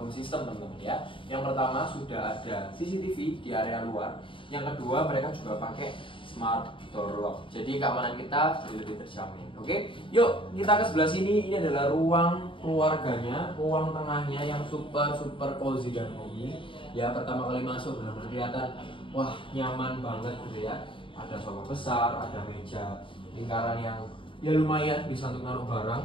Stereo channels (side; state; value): right; late; 0.25 ms